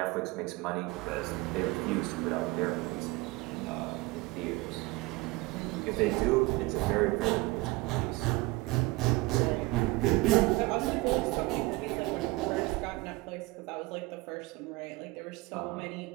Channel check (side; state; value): left; quieter; 22.0 dB